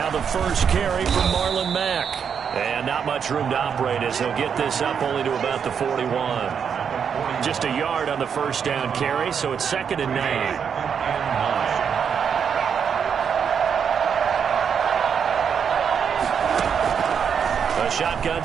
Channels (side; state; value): left; quieter; 7.2 dB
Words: the first carry from Marlon Mack. And not much room to operate as he'll get this up only to about the 41. Just a yard on the first down carry, so it's 2nd and 9. Shotgun